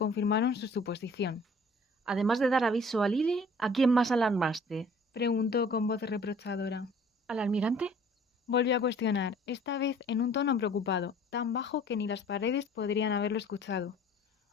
su suposición. Además de dar aviso a Lili, ¿a quién más alarmaste? Preguntó con voz reprochadora. ¿Al almirante? Volvió a cuestionar, esta vez en un tono preocupado, tan bajo que ni las paredes podrían haberlo escuchado.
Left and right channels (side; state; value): both; normal; correlation 0.52